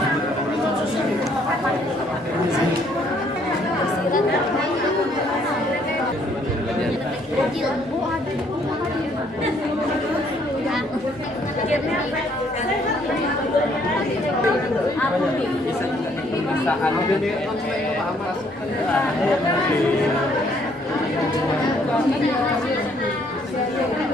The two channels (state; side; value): normal; both; correlation 0.66